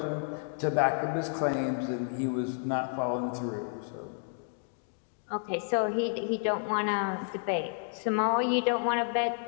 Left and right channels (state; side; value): silent; right; digital silence